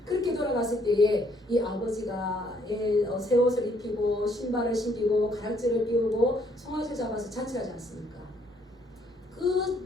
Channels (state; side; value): normal; both; correlation 0.67